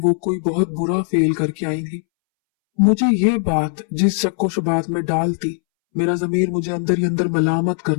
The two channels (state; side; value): silent; right; 65 dB below the other